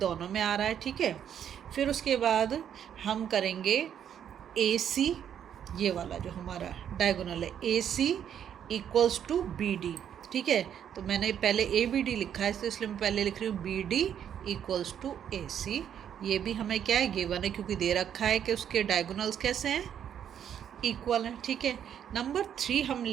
में आ रहा है। ठीक है, फिर उसके बाद हम करेंगे AC, ये वाला जो हमारा डायगोनल है AC इक्वल्स टू BD। ठीक है, तो मैंने पहले ABD लिखा है, तो इसलिए मैं पहले लिख रही हूँ BD इक्वल्स टू AC। ये भी हमें क्या है? गिवन है, क्योंकि दे रखा है कि उसके डायगोनल्स कैसे हैं? इक्वल है। ठीक है, नंबर 3 हम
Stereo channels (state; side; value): quieter; left; 9.2 dB